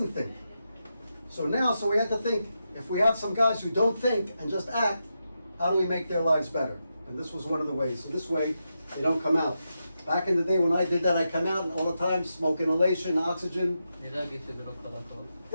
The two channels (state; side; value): inverted; both; correlation -0.87